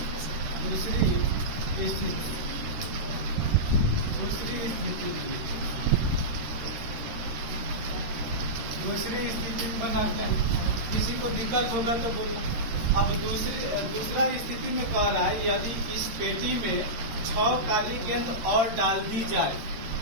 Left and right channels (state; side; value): late; left; 13 ms